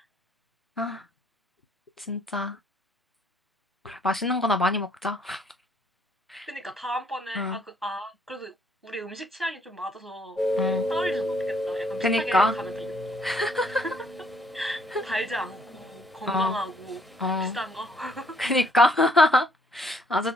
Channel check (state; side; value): normal; both; correlation 0.67